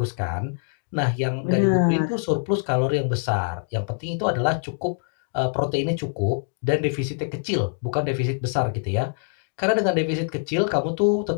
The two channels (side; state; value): right; silent; digital silence